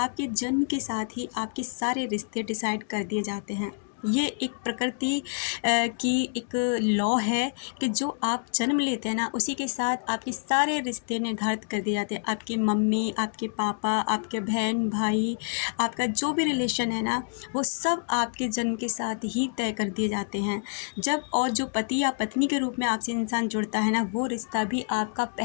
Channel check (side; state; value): right; silent; digital silence